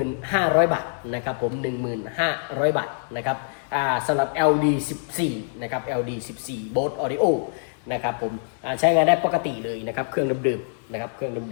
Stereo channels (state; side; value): silent; right; digital silence